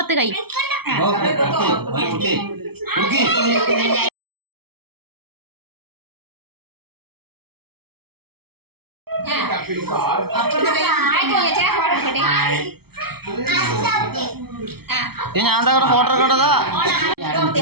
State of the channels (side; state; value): left; late; 0.96 ms